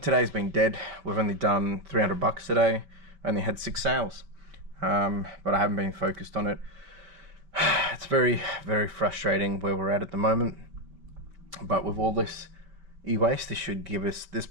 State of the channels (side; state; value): left; late; 5.0 ms